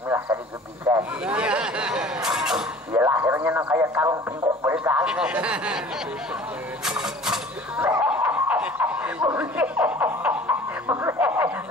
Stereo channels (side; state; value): both; normal; correlation 0.46